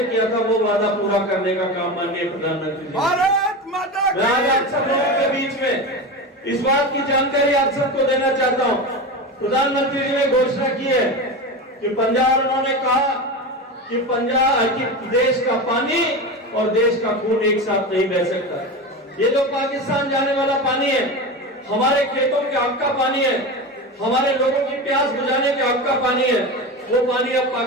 किया था वो वादा पूरा करने का काम माननीय प्रधानमंत्री जी। भारत माता की। मैं आज आप सब लोगों के बीच में इस बात की जानकारी आप सबको देना चाहता हूँ। प्रधानमंत्री जी ने घोषणा की है कि पंजाब, उन्होंने कहा कि पंजाब की देश का पानी और देश का खून एक साथ नहीं बह सकता। ये जो पाकिस्तान जाने वाला पानी है, हमारे खेतों के हक का पानी है, हमारे लोगों की प्यास बुझाने के हक का पानी है, वो पानी अब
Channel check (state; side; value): normal; both; correlation 0.23